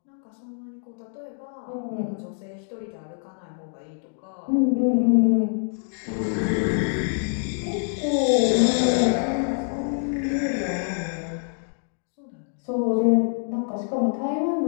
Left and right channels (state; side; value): silent; right; 61 dB below the other